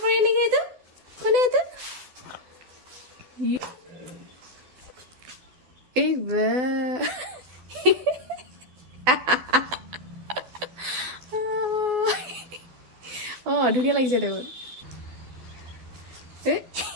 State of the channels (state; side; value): late; left; 12 ms